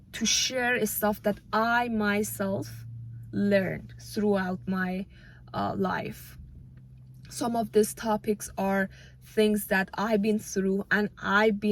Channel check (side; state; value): both; identical; correlation 1.00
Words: to share stuff that I myself learned throughout my life. Some of these topics are things that I've been through and I've